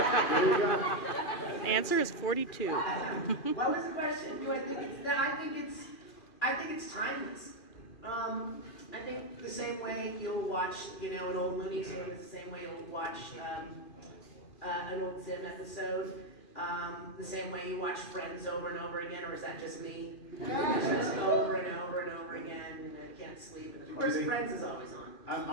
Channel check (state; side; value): late; right; 2.4 ms